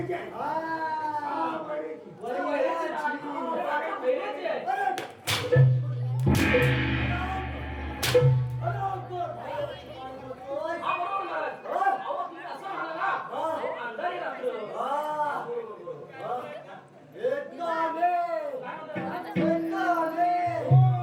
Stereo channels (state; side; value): identical; both; correlation 1.00